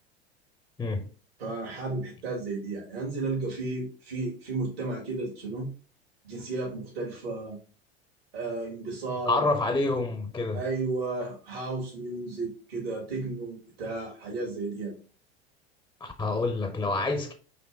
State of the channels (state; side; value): normal; both; correlation 0.40